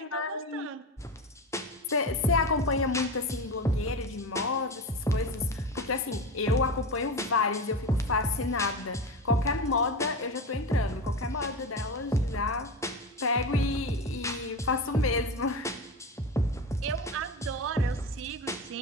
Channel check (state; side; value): normal; both; correlation 0.24